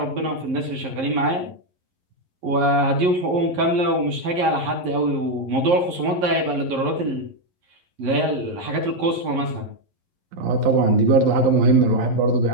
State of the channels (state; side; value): late; left; 11 ms